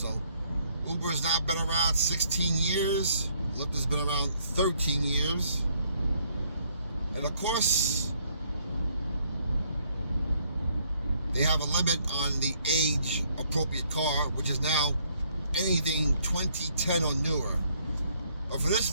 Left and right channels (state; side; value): inverted; both; correlation -0.67